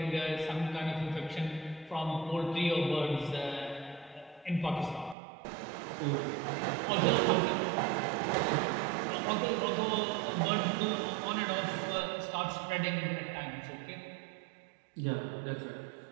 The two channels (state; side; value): drops out; left; at 5.2 s